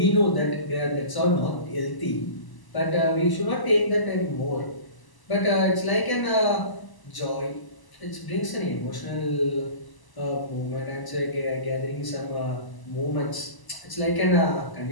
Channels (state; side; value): late; right; 1.0 ms